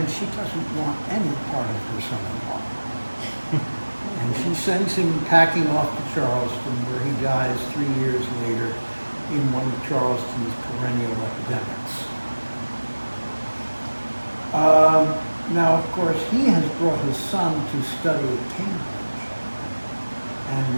she doesn't want any part of her son-in-law. And she sends him packing off to Charleston, where he dies 3 years later in one of Charleston's perennial epidemics. Now, of course, he has brought his son to study at Cambridge, and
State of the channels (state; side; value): inverted; both; correlation -1.00